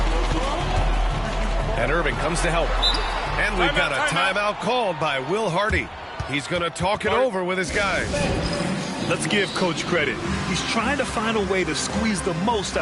And Irving comes to help. And we've got a timeout called by Will Hardy. He's going to talk it over with his guys. Let's give Coach credit. He's trying to find a way to squeeze the most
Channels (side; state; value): both; identical; correlation 1.00